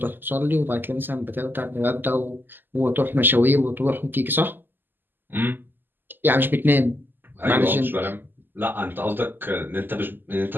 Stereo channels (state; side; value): late; left; 0.092 ms